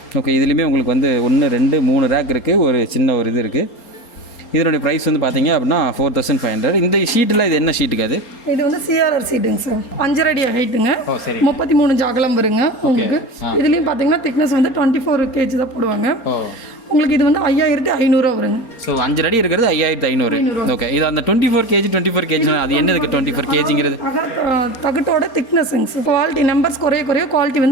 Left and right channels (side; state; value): right; late; 4.3 ms